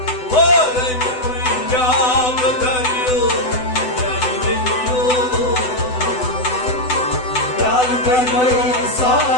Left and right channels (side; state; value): right; late; 8.0 ms